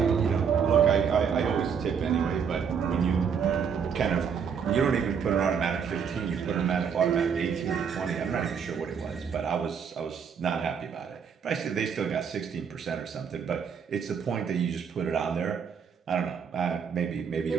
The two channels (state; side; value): quieter; left; 6.9 dB